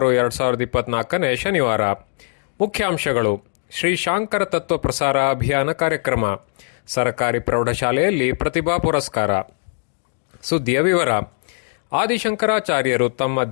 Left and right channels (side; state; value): right; silent; digital silence